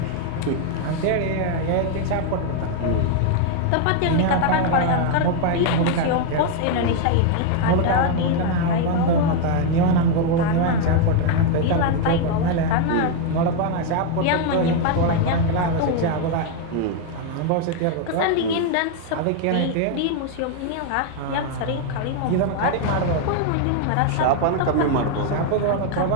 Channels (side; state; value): both; different; correlation 0.01